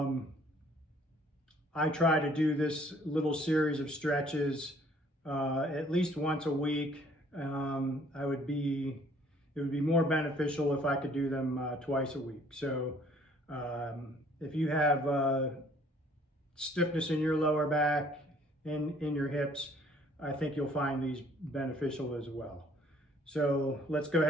try to do this little series of stretches at least once a week. It would be more beneficial if I could do them twice a week. So if you have stiffness in your lower back and in your hips, I think you'll find these beneficial as well. So let's go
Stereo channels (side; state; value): both; normal; correlation 0.59